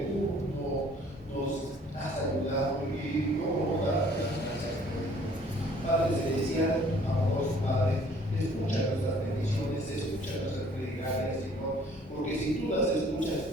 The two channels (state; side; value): normal; both; correlation 0.57